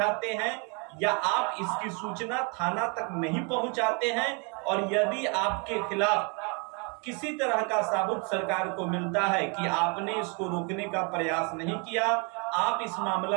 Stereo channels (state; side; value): quieter; left; 34.1 dB